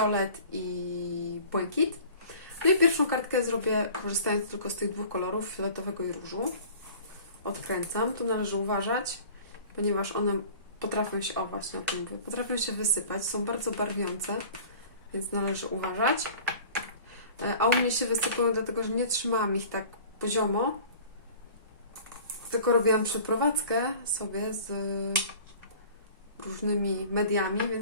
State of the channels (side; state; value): both; inverted; correlation -0.45